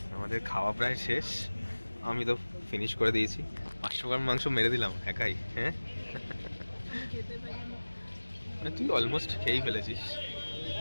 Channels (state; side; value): inverted; both; correlation -1.00